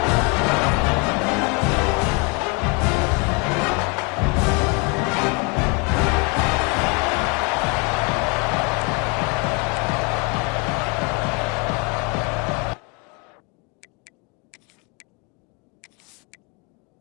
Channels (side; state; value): right; quieter; 30.0 dB